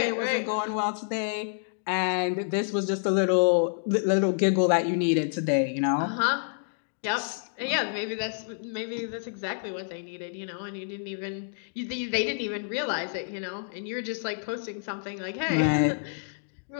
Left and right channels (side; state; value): right; silent; digital silence